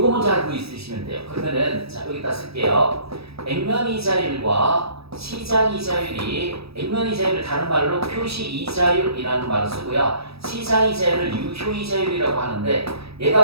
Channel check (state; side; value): late; left; 0.77 ms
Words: 먼저 알고 있으시면 돼요. 그러면은 자 여기다 쓸게요. 액면이자율과 시장이자율이 액면이자율을 다른 말로 표시이자율이라는 말을 쓰고요. 시장이자율을 유효이자율이라고 하는데